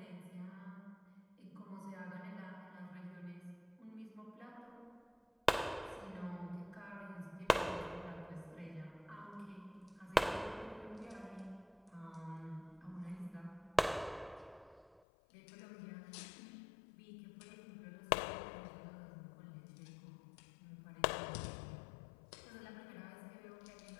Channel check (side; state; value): right; drops out; at 15.0 s